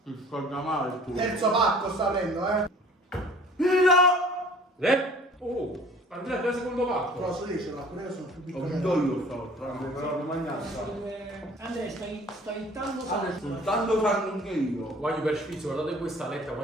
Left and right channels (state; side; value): normal; both; correlation 0.49